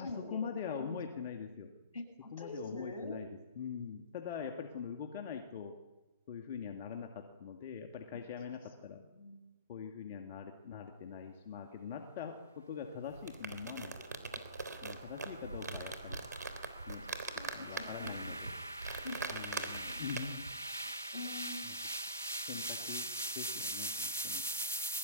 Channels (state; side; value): inverted; both; correlation -0.42